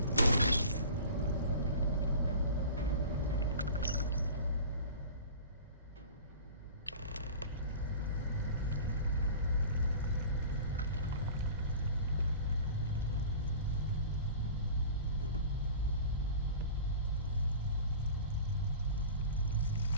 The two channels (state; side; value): inverted; both; correlation -0.39